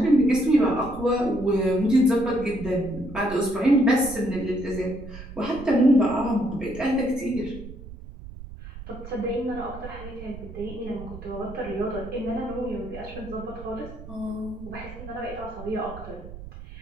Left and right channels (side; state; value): right; noise; rumble, 13 dB below the sound